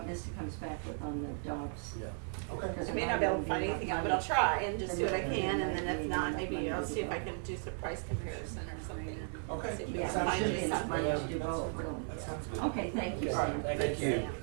Misty comes back with on the dogs. Yeah. Okay. I may not be able to find anything out, but I'll try and just do what I can, and then if not, maybe I'll see if I can do some price comparison or something. Okay. See if we Yeah, can Sounds find good. you it's something. money to do both, really. That sounds good. Okay, thank you, Okay. Sam. Thank you.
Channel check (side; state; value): left; silent; 54 dB below the other